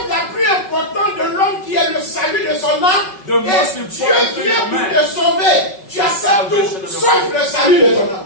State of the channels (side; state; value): right; late; 5.3 ms